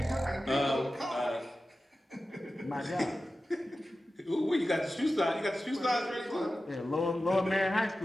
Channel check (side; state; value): both; normal; correlation 0.94